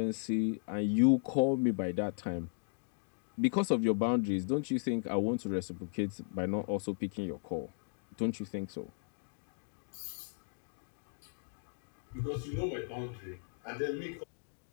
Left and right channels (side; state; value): right; silent; digital silence